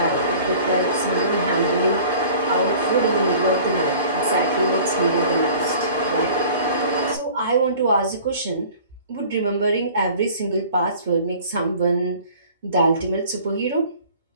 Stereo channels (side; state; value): both; inverted; correlation -0.47